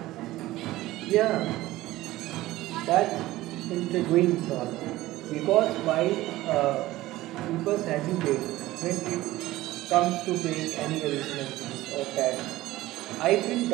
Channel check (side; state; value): left; quieter; 17.0 dB